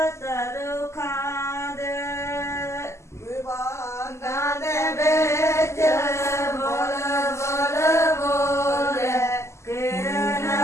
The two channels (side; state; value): right; late; 0.13 ms